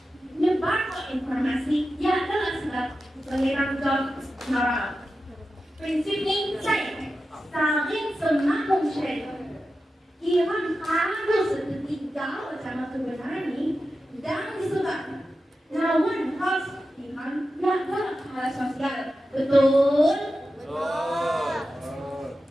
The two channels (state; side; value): normal; both; correlation 0.92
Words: Nyebar informasi yang adalah sebab pengiran job moral. Prinsip ini saya saling semakin share. Iman harus ketiga sama kebenaran ini dan disebabkan. Namun harus iman yang adalah hal sosial Betul?